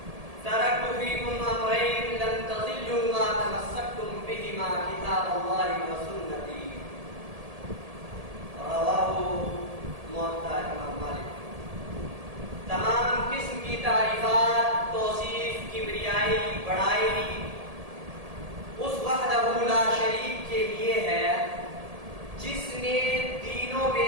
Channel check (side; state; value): left; late; 1.8 ms